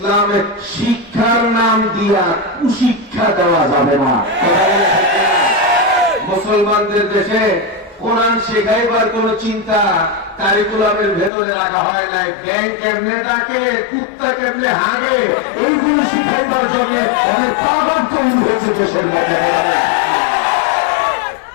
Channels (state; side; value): drops out; right; at 11.3 s